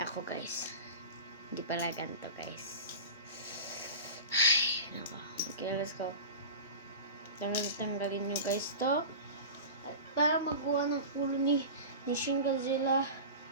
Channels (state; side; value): inverted; both; correlation -0.32